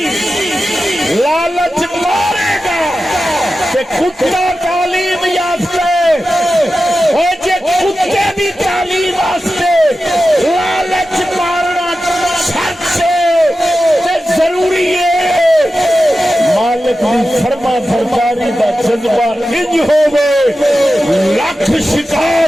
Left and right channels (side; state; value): both; normal; correlation 0.92